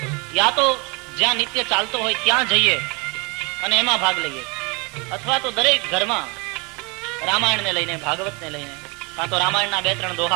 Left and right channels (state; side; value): quieter; left; 29.4 dB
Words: યા તો જ્યાં નિત્ય ચાલતો હોય ત્યાં જઈએ અને એમાં ભાગ લઈએ, અથવા તો દરેક ઘરમાં રામાયણને લઈને, ભાગવતને લઈને, કાં તો રામાયણના 2-3